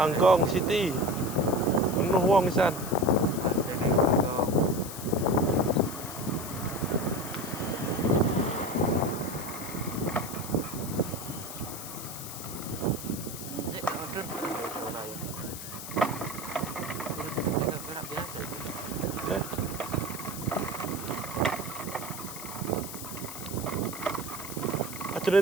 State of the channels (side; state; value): left; noise; hiss, 10 dB below the sound